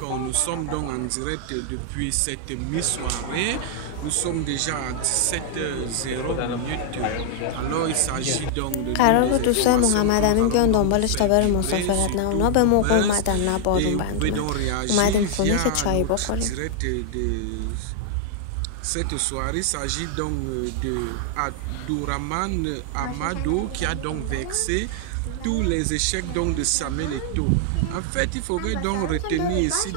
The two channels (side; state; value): both; different; correlation 0.00